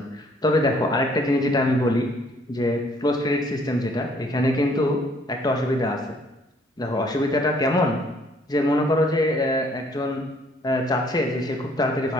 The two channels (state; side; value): normal; both; correlation 0.62